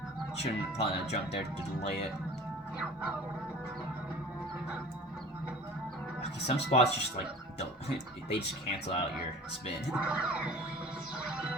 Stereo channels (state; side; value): normal; both; correlation 0.43